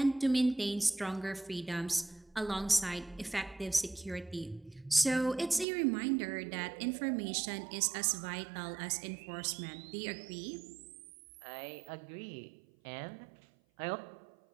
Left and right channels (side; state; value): left; drops out; at 5.7 s